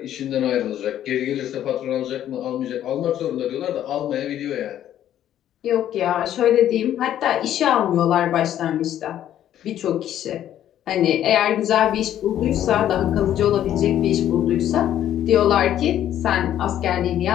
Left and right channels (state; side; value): quieter; right; 11.3 dB